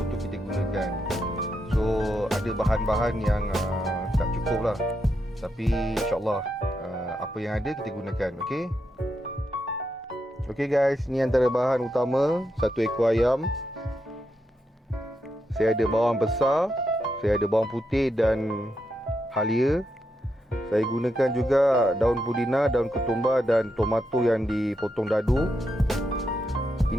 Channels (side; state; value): both; normal; correlation 0.83